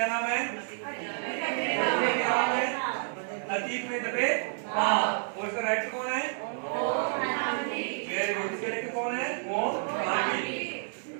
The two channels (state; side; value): silent; left; digital silence